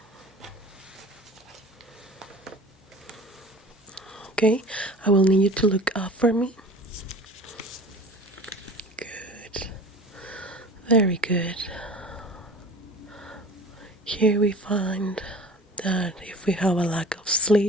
Okay, I will need you to look up for me. Good. Very good. Here we find that if we have a lack of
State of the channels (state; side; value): normal; both; correlation 0.42